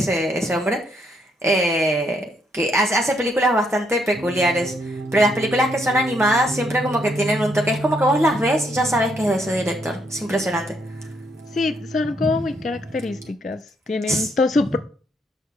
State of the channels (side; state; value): both; normal; correlation 0.74